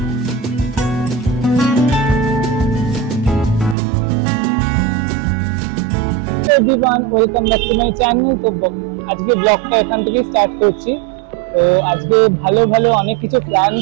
everyone welcome back to my channel. তো আজকে ব্লগটা এখান থেকে স্টার্ট করছি। তো আজকে ভালো ভালো অনেক কিছু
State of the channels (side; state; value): left; drops out; at 3.8 s